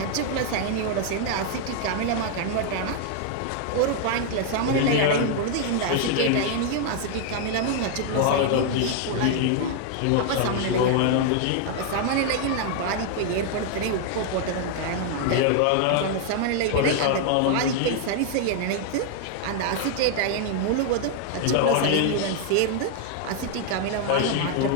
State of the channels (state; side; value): different; both; correlation 0.00